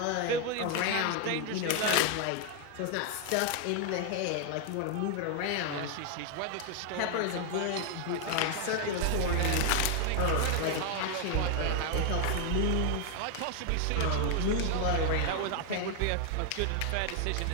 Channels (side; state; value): both; different; correlation 0.00